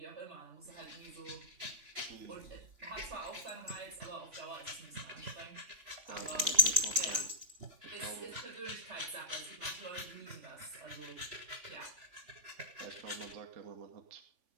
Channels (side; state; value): left; late; 3.5 ms